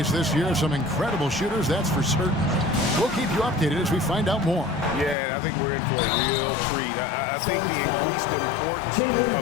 this year. Some incredible shooters, that's for certain. We'll keep you updated as we find out more. Yeah, I think we're in for a real treat. I think the increased importance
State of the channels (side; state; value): right; drops out; at 5.2 s